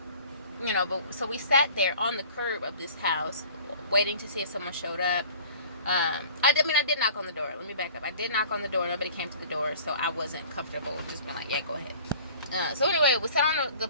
But so we sat there on the curb of this house, waiting to see if someone showed up. I did knock on the door. Let me back up. I did knock on the door. Nobody came to the door, so I wasn't comfortable just being like, yeah, go ahead. So anyway, we sat on the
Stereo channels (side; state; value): both; inverted; correlation -0.47